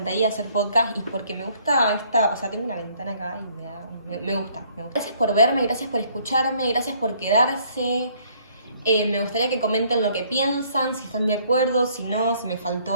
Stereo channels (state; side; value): inverted; both; correlation -0.63